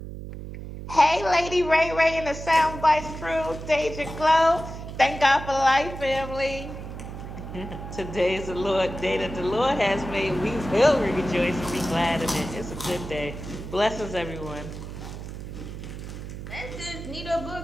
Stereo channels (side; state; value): right; noise; hum, 10 dB below the sound